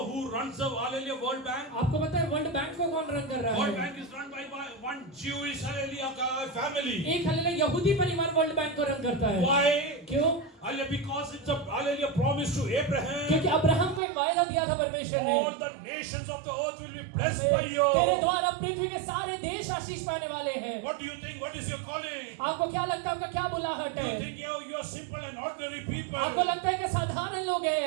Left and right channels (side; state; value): left; drops out; at 14.0 s